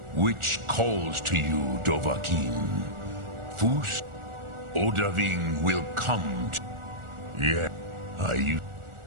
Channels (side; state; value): left; late; 1.4 ms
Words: Which calls to you, Dovahkiin? Fus? Odahviing will come to... Yeah, I